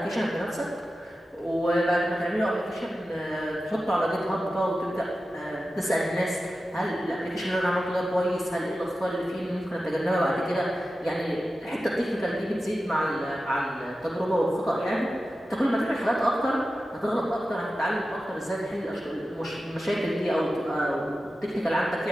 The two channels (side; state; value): both; normal; correlation 0.93